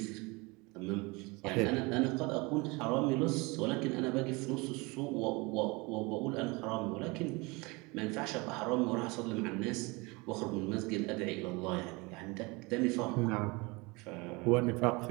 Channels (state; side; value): quieter; left; 25.9 dB